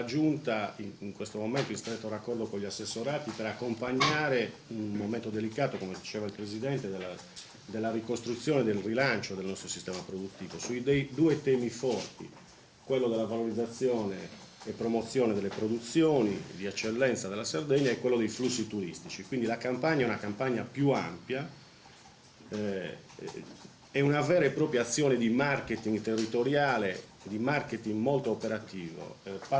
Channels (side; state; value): both; identical; correlation 1.00